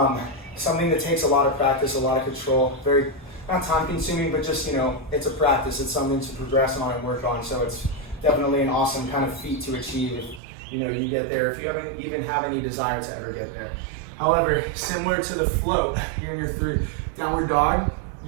Something that takes a lot of practice, a lot of control, very, not time consuming, but just, it's a practice. It's something to progress on and work on. So it's definitely an awesome kind of feat to achieve if, you get there, if you even have any desire to ever get there. However, similar to the float, you're in your 3 downward dog.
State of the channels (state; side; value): drops out; left; at 10.4 s